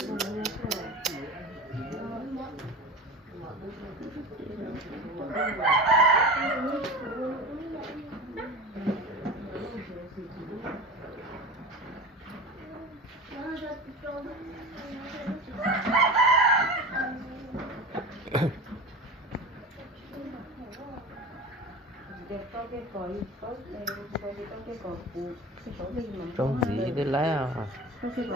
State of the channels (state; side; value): normal; both; correlation 0.31